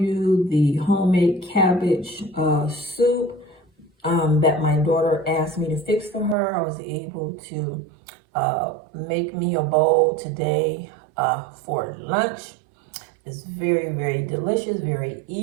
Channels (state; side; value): drops out; left; at 6.4 s